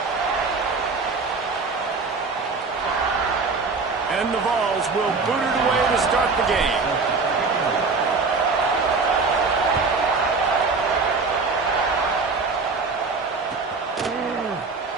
And the Vols will boot it away to start the game.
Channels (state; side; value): quieter; left; 4.3 dB